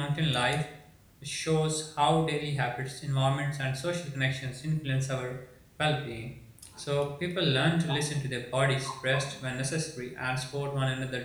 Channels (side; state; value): both; identical; correlation 1.00